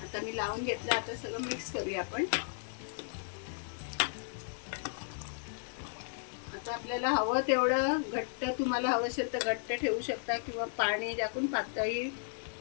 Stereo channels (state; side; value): silent; right; digital silence